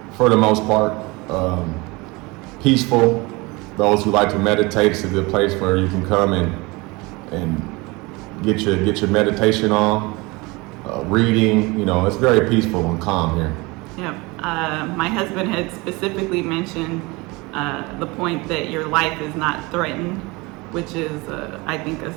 for the most part. Peaceful. Those who like to meditate, it's a good place where you can come and get your meditation on. Reading, you know, it's very peaceful and calm here. Yeah, my husband had specifically mentioned the point that your life is not threatened, which is, I think, a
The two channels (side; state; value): left; quieter; 24.7 dB